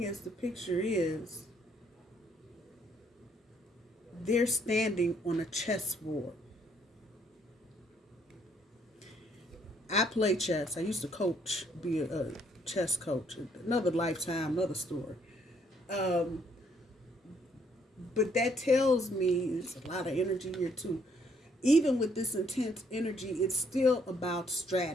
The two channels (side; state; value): both; normal; correlation 0.68